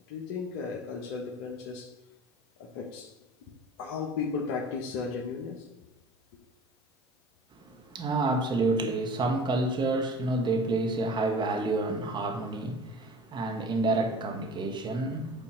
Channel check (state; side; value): normal; both; correlation 0.42